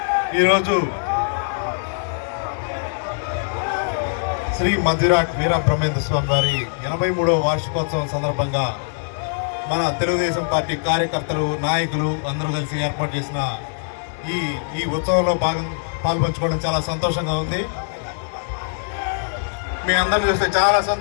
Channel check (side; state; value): right; silent; digital silence